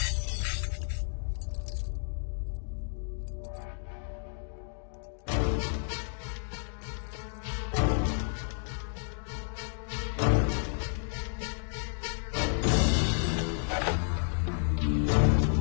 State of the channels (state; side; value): silent; right; digital silence